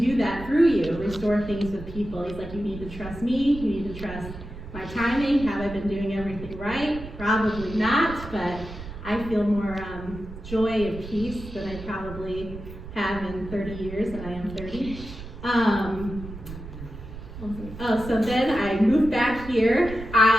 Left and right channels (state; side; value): noise; right; rumble, 12 dB below the sound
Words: that through you, restore things with people. He's like, you need to trust me, you need to trust my timing. Have I been doing everything right? Probably not, but I feel more joy and peace than I probably have in 30 years, and I am 30. So then I moved back here.